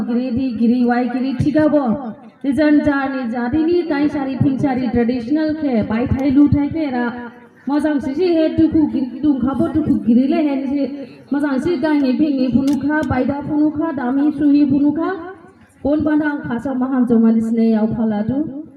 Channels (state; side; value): identical; both; correlation 1.00